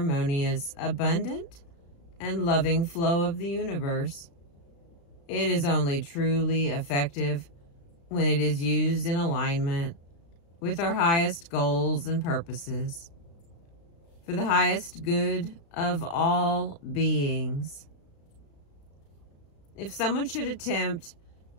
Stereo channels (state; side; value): late; right; 35 ms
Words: abundant, and loving flow of the universe. It is only truly effective when it is used in alignment with our highest goals and purposes for the highest good of all beings. If someone should attempt